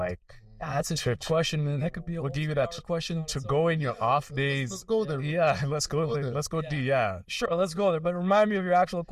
that's a good question, man. That could be what gave you that question to go in your off days. Let's go there. Yeah, let's go there. Let's go do. Yeah, sure. Let's go there. But remind me of your actual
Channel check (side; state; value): both; identical; correlation 1.00